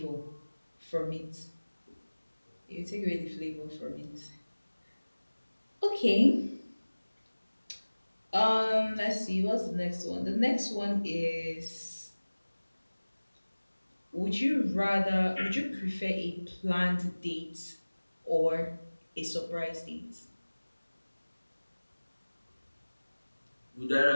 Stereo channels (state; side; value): inverted; both; correlation -1.00